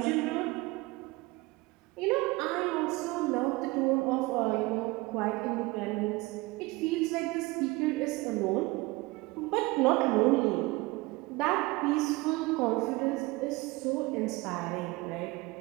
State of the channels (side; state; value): left; quieter; 22.6 dB